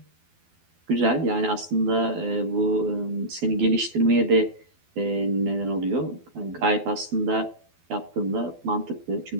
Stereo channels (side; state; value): left; late; 12 ms